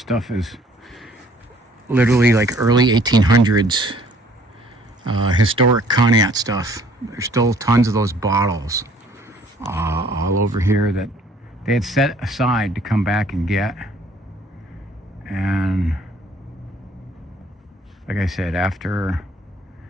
is literally like early 1800s historic Conneaut stuff. There's still tons of those bottles all over here that they had set aside to come back and get. And like I said, after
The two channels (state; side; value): normal; both; correlation 0.58